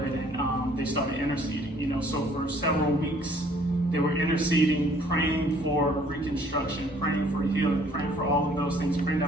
and they started interceding. So for several weeks, they were interceding, praying for reconstruction, praying for healing, praying for all of those things, praying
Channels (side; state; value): both; normal; correlation 0.59